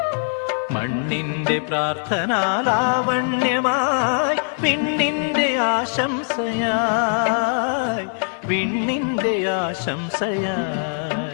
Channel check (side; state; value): right; silent; 65 dB below the other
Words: മണ്ണിന്റെ പ്രാർത്ഥനാലാവണ്യമായി വിണ്ണിന്റെ ആശംസയായി, വിണ്ണിന്റെ